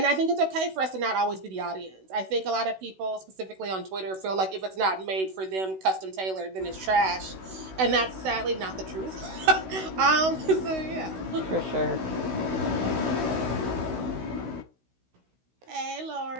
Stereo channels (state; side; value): late; left; 16 ms